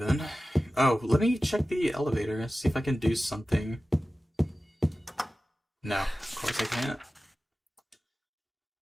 Oh, let me check the elevator, see if I can do something. No, of course I can't.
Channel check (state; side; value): normal; both; correlation 0.95